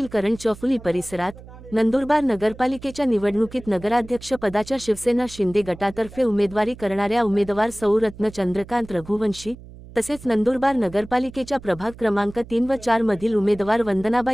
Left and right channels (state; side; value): noise; right; hum, 18 dB below the sound